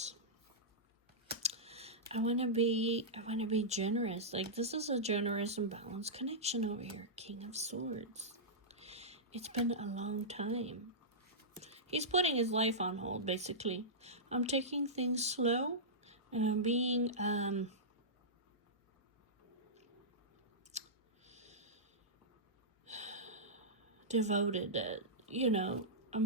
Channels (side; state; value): both; normal; correlation -0.14